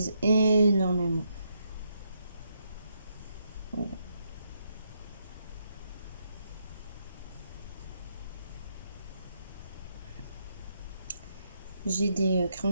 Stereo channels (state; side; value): inverted; both; correlation -0.78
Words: énormément. Voilà. J'ai des